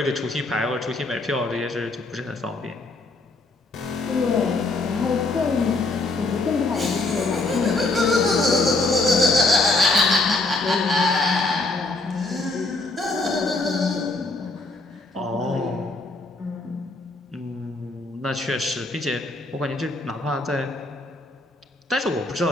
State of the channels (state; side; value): quieter; right; 3.1 dB